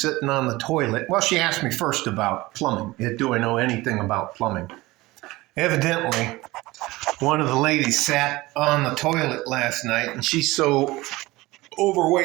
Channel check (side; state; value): left; quieter; 20.0 dB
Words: on the toilet. Well, she asked me first about plumbing. Do I know anything about plumbing? Evidently, one of the ladies sat on the toilet last night, and she's so